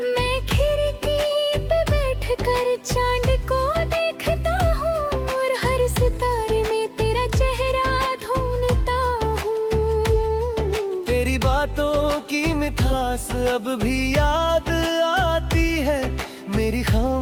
मैं खिड़की पे बैठकर चांद को देखता हूँ, और हर सितारे में तेरा चेहरा ढूंढता हूँ। तेरी बातों की मिठास अब भी याद आती है, मेरी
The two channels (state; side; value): identical; both; correlation 1.00